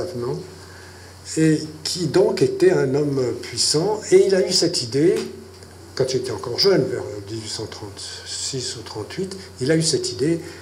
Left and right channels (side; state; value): both; identical; correlation 1.00